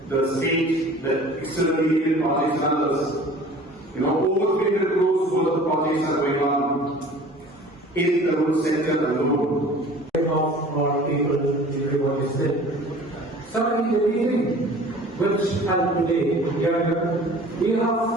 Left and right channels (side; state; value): both; normal; correlation 0.45